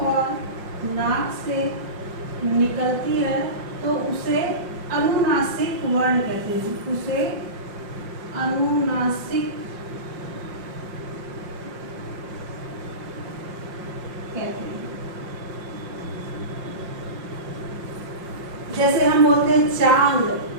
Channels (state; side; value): late; left; 5.6 ms